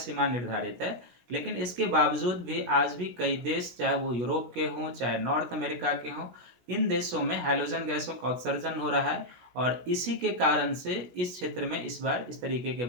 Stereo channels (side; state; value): left; late; 16 ms